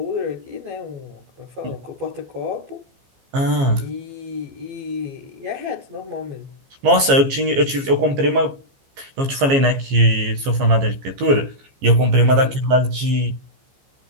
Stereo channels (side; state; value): left; late; 15 ms